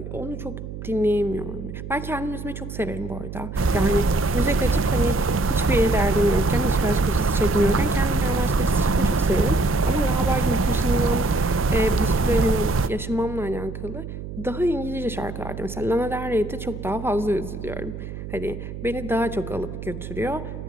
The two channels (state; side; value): noise; right; hum, 9 dB below the sound